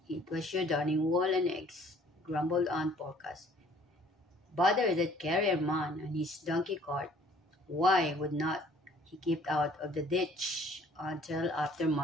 it was your darning wall and eggs, grumbled Aunt Dorcas. Bother that carrier man and his donkey cart. Why would not he keep out of the ditch until after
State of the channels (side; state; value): both; normal; correlation 0.57